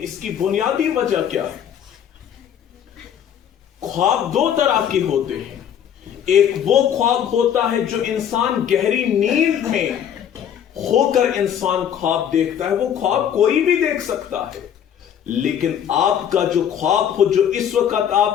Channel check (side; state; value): right; quieter; 9.2 dB